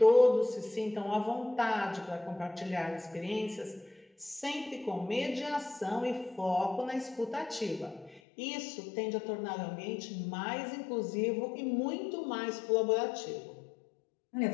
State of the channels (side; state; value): right; drops out; at 8.2 s